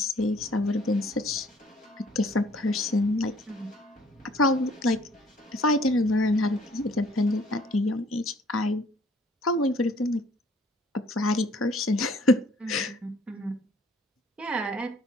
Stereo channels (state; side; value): normal; both; correlation 0.58